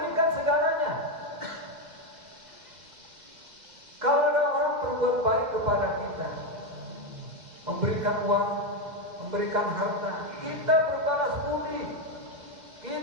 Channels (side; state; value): left; late; 2.1 ms